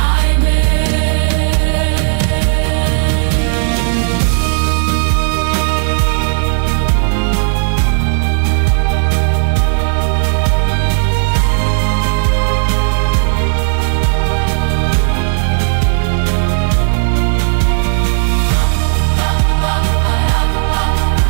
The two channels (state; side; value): silent; left; digital silence